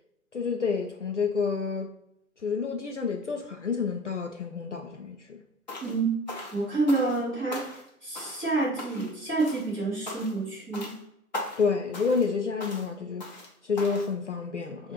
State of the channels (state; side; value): normal; both; correlation 0.42